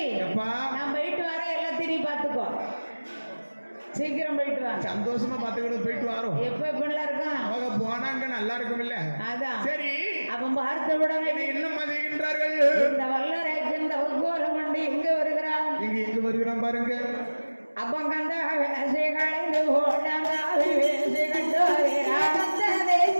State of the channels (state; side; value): inverted; both; correlation -1.00